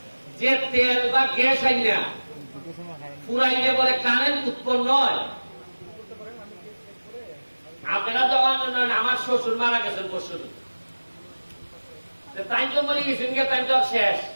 যে তেল বা গ্যাস আইনা ফুরাইলে পরে কারেন্ট উৎপন্ন হয়। আপনারা যখন আমার শ্বশুর মারা গেছেন পরশু, তাই তো মরে গেছেন, তাই তো শেষ।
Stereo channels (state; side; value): inverted; both; correlation -1.00